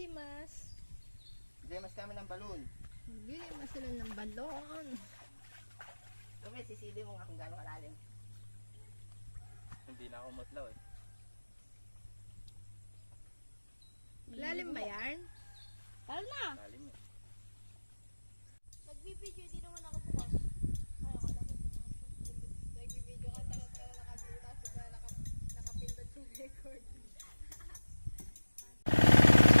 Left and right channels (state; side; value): inverted; both; correlation -1.00